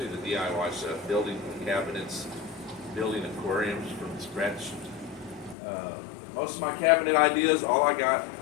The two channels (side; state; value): right; drops out; at 5.6 s